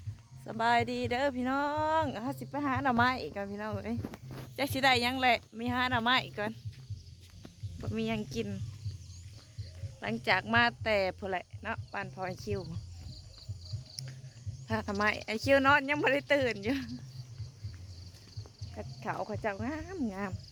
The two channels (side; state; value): both; identical; correlation 1.00